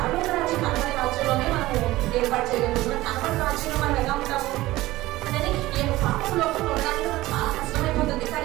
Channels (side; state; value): left; quieter; 17.7 dB